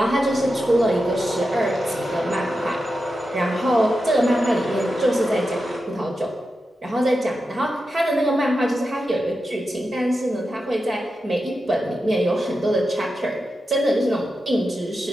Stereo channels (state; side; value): normal; both; correlation 0.90